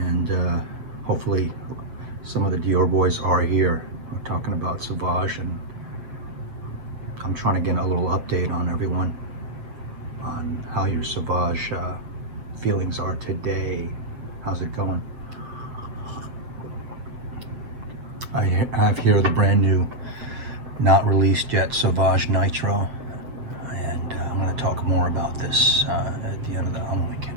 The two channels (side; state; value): left; late; 8.0 ms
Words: hopefully some of the Dior boys are here. We're talking about Sauvage, and I'm trying to get a little update on everyone on how your Sauvage feelings are today. How's it going? I have here the brand new, not released yet, Sauvage Nitro, and I'm going to talk more about this at the end of the. I'm only